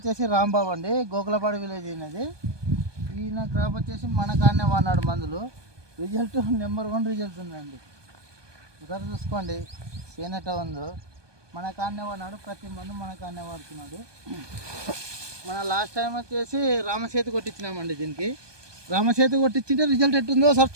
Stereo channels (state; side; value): late; left; 1.2 ms